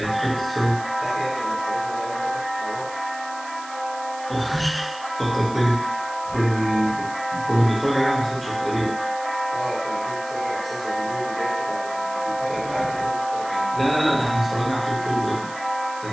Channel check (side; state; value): right; noise; hiss, 17 dB below the sound